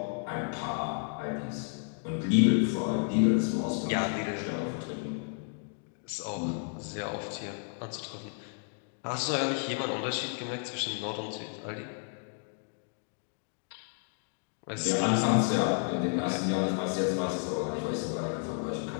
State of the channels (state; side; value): silent; right; 56 dB below the other